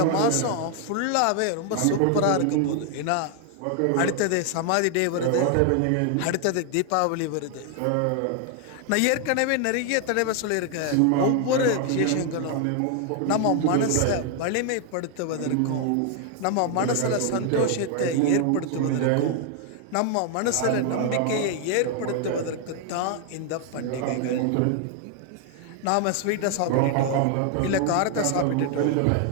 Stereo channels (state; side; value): different; both; correlation 0.00